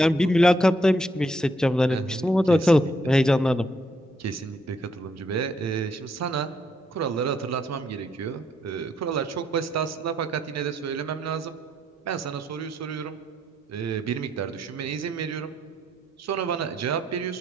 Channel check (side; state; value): both; normal; correlation 0.73